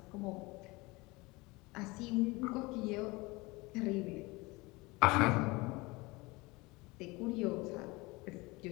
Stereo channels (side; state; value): right; quieter; 23.7 dB